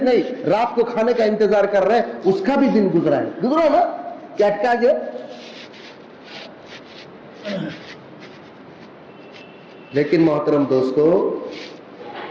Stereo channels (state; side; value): identical; both; correlation 1.00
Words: نہیں, رات کو کھانے کا انتظار کر رہے ہیں, اس کا بھی دن گزرا ہے. گزرا نا, کیا اٹکا گیا. لیکن محترم دوستو,